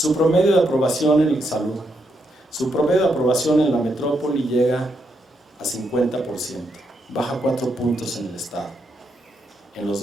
promedio de aprobación en salud. Su promedio de aprobación en la metrópoli llega a 50%, baja 4 puntos en el estado. En los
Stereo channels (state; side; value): normal; both; correlation 0.80